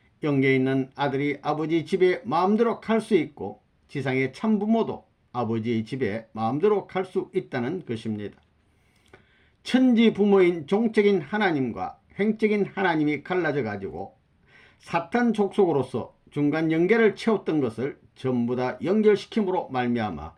영계에 있는 아들이 아버지 집에 마음대로 갈 수 있고 지상의 참부모도 아버지의 집에 마음대로 갈 수 있다는 것입니다. 천지 부모인 종적인 하나님과 횡적인 하나님이 갈라져 가지고 사탄 족속으로서 중간 연계를 채웠던 것을 전부 다 연결시킴으로 말미암아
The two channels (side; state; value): both; identical; correlation 1.00